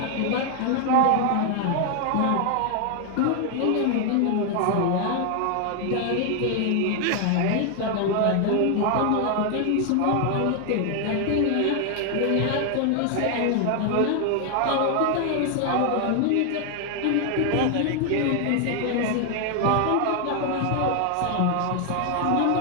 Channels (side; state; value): both; different; correlation 0.00